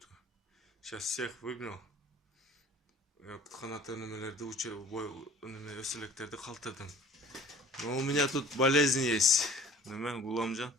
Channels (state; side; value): normal; both; correlation 0.49